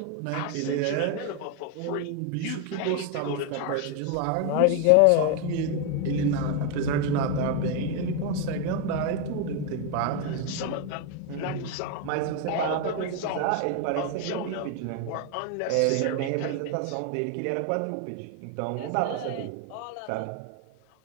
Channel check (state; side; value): different; both; correlation 0.01